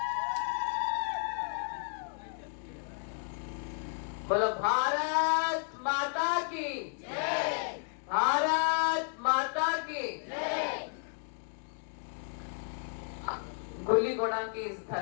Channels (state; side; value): silent; right; 56 dB below the other